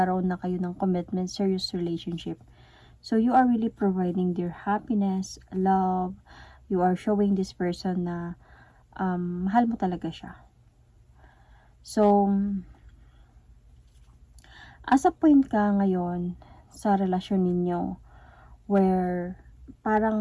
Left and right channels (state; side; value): identical; both; correlation 1.00